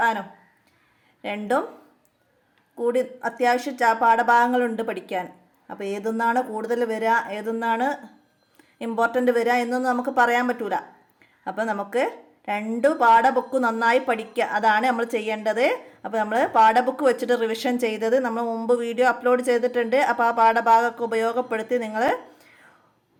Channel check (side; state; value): both; identical; correlation 1.00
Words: രണ്ടും കൂടി അത്യാവശ്യം പാഠഭാഗങ്ങളുണ്ട് പഠിക്കാൻ. അപ്പോൾ ഏതൊന്നാണ് കൂടുതൽ വരിക, ഏതൊന്നാണ് ഇമ്പോർട്ടൻ്റ് വരിക എന്നൊന്നും നമുക്ക് പറയാൻ പറ്റൂല. അപ്പോൾ നമുക്ക് രണ്ട് പാഠബുക്ക് നന്നായി പഠിക്കുക, അതാണ് നമ്മൾ ചെയ്യേണ്ടത്. അപ്പോൾ നമ്മൾ പാഠബുക്ക് വെച്ചിട്ട് റിവിഷൻ ചെയ്തത് നമ്മൾ മുമ്പ് വീഡിയോ അപ്ലോഡ് ചെയ്തിട്ടുണ്ട്. അപ്പോൾ ആ പാഠഭാഗമൊക്കെ ഉപയോഗപ്പെടുത്തി നിങ്ങൾ